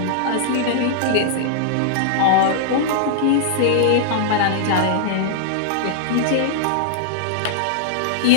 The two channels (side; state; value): both; different; correlation -0.01